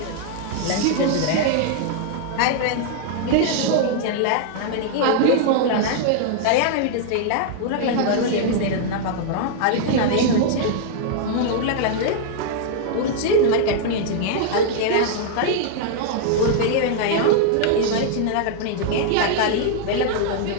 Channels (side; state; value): both; different; correlation -0.01